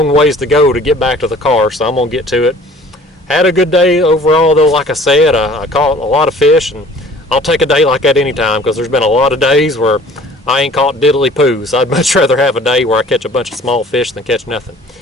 ways to go to get back to the car. So I'm going to get to it. Had a good day overall, though. Like I said, I caught a lot of fish. And I'll take a day like that anytime, because there's been a lot of days where I ain't caught diddly poos. I'd much rather have a day where I catch a bunch of small fish than catch nothing.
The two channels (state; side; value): normal; both; correlation 0.51